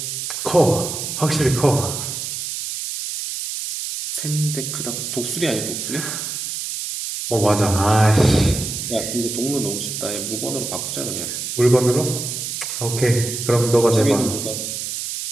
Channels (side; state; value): right; noise; hiss, 5 dB below the sound